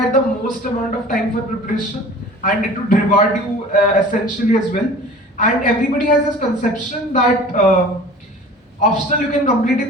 the most amount of time for preparation, and it would reward you essentially as well. And everybody has this conception that optional you can complete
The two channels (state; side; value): normal; both; correlation 0.43